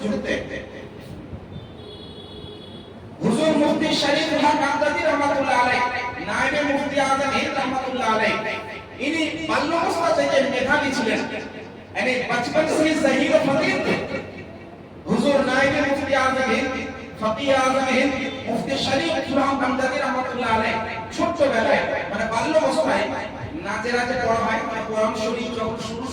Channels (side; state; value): both; identical; correlation 1.00